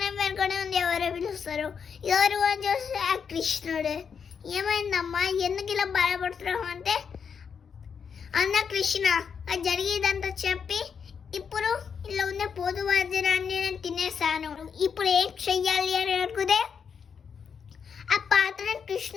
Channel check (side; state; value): right; quieter; 6.6 dB